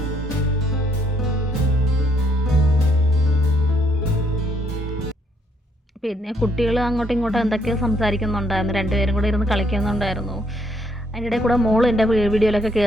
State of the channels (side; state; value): both; normal; correlation 0.71